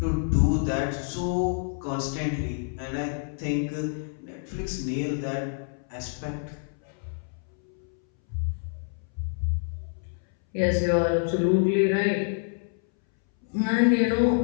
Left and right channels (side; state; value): right; silent; 60 dB below the other